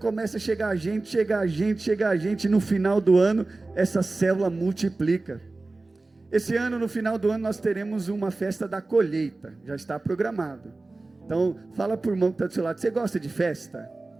a chegar gente, e no final do ano, essa célula multiplica. Esse ano, no final do ano, nós teremos uma festa da colheita, já está programado. Então, fala para o irmão que está do seu lado: você gosta de festa?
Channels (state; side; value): quieter; left; 3.2 dB